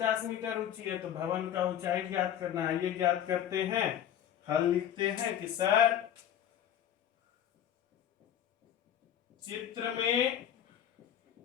मीटर ऊंची है, तो भवन का ऊंचाई ज्ञात करना है। ये ज्ञात करते हैं, हल लिखते हैं कि सर चित्र में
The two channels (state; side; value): quieter; right; 10.2 dB